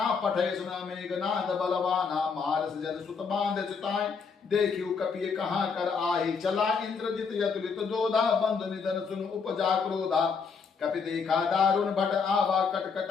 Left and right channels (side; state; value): right; quieter; 5.5 dB